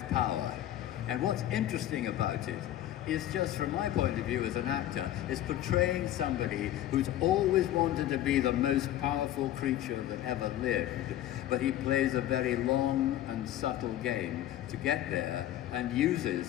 power. And what's interesting about it is, just from my point of view as an actor, is portraying somebody who's always wanted to be the most powerful creature that ever lived, but he plays a very long and subtle game to get there and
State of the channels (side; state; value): right; quieter; 12.9 dB